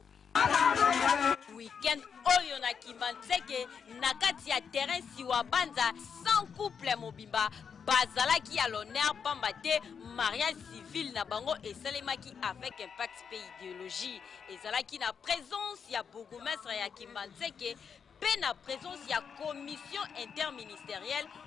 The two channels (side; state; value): right; quieter; 6.6 dB